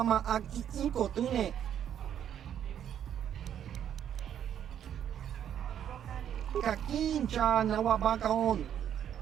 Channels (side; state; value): left; quieter; 9.7 dB